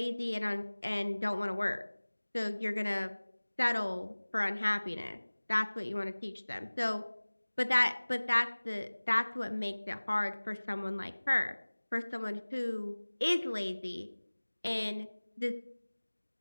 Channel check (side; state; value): both; inverted; correlation -1.00